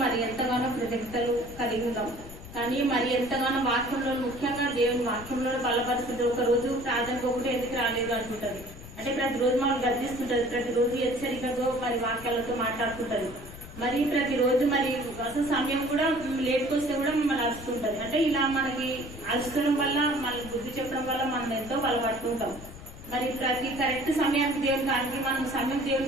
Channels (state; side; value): noise; left; rumble, 15 dB below the sound